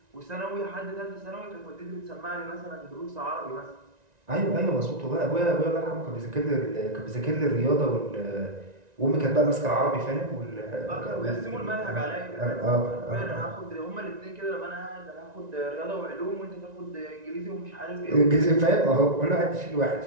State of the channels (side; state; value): left; late; 1.9 ms